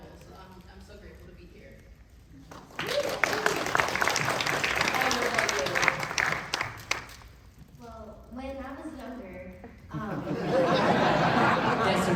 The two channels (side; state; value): both; identical; correlation 1.00